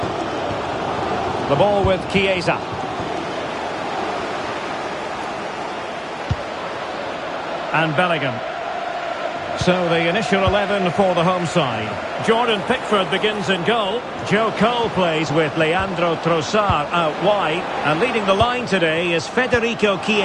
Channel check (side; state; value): both; identical; correlation 1.00